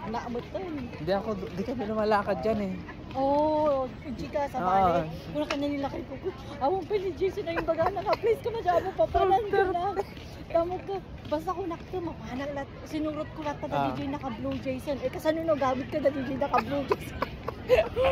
to. Hindi ako, di kami lumalakad dyan eh. Oo, chika sa bali. Kung ka na nilakay ko. Awang pa ni Jason na yung baga na please ko na dyan mo papalan ko na. Tamo ko. Basta ko nakita, mapahanal lahat. Sinurot ko lahat na DJ naka-blue Jason. Eh kasanino gamit ka na DJ naka-blue Jason.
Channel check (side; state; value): both; identical; correlation 1.00